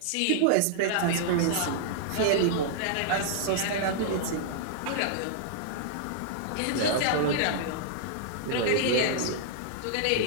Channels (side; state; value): both; different; correlation -0.01